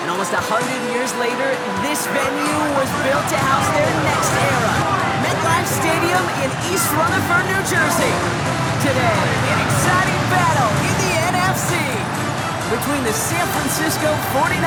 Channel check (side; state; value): both; identical; correlation 1.00